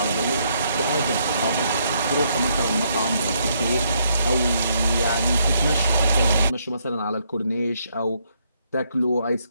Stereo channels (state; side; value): inverted; both; correlation -0.73